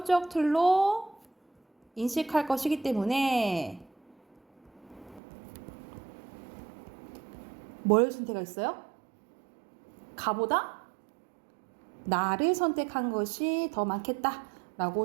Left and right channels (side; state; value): left; drops out; at 5.2 s